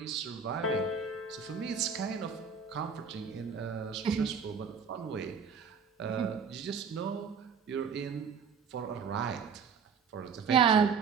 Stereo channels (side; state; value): left; quieter; 6.0 dB